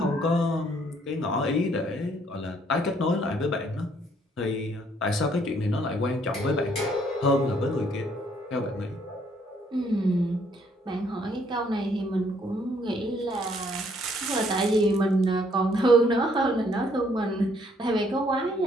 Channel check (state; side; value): normal; both; correlation 0.66